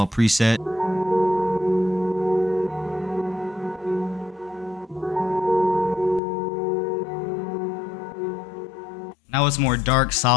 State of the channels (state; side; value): drops out; right; at 6.2 s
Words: preset. Now Now it's more dark,